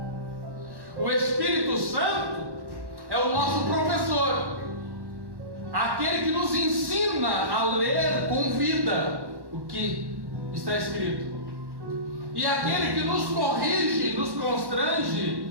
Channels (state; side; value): late; left; 1.1 ms